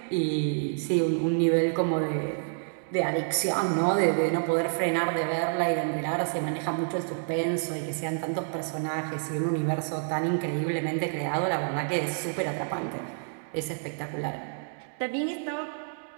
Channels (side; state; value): left; silent; digital silence